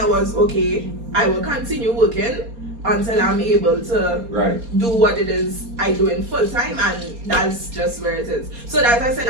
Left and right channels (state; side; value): late; left; 4.3 ms